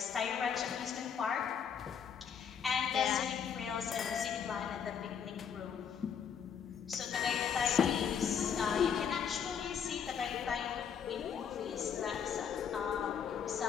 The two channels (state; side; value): quieter; right; 7.5 dB